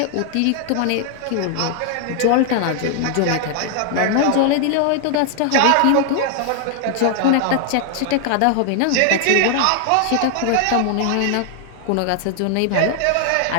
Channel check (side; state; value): both; different; correlation 0.00